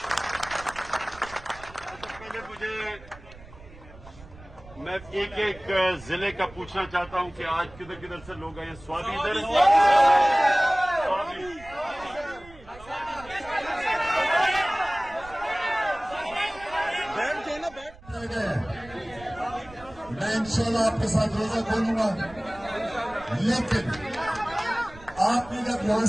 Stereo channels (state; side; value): noise; right; rumble, 20 dB below the sound